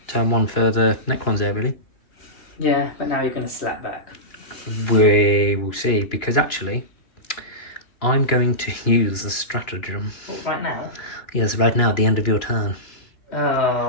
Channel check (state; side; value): late; right; 3.0 ms